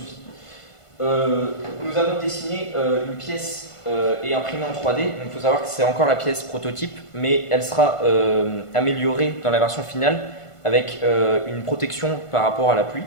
Nous avons dessiné une pièce et imprimée en 3D. Donc il faut savoir que c'est encore la pièce prototype, mais elle sera améliorée dans la version finale avec une protection par rapport à la pluie.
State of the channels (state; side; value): late; right; 1.5 ms